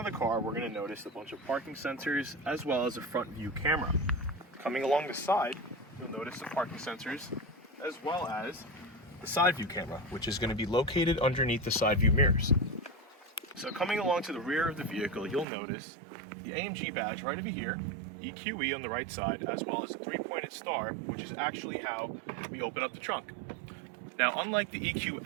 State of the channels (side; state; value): left; drops out; at 15.5 s